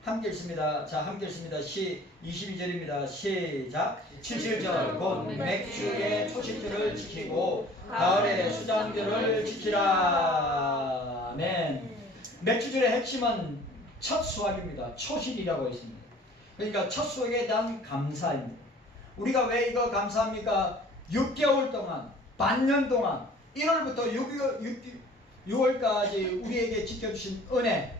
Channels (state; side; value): normal; both; correlation 0.50